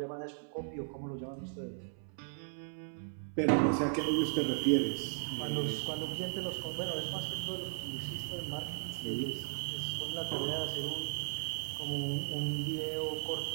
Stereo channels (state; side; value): silent; left; 54 dB below the other